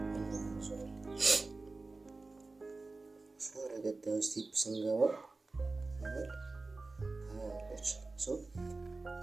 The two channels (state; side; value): quieter; left; 3.6 dB